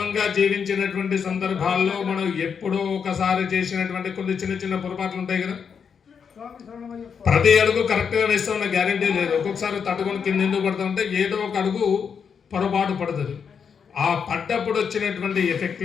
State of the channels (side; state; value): right; quieter; 6.7 dB